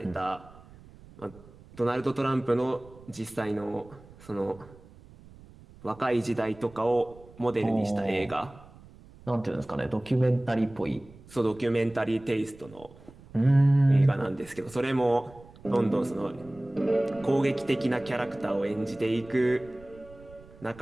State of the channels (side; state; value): right; noise; rumble, 22 dB below the sound